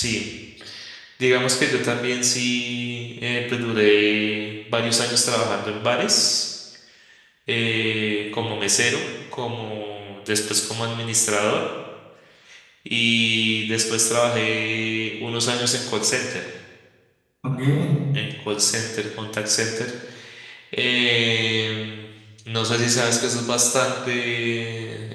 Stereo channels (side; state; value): both; identical; correlation 1.00